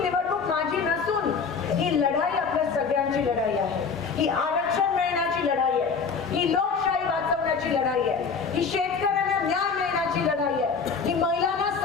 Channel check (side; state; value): right; quieter; 5.5 dB